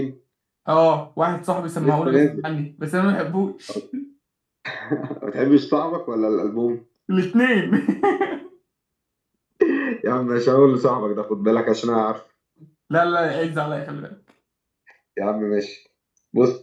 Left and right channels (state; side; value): identical; both; correlation 1.00